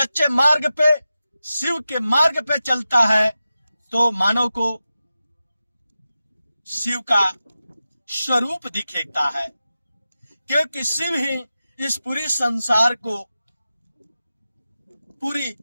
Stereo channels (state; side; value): inverted; both; correlation -0.93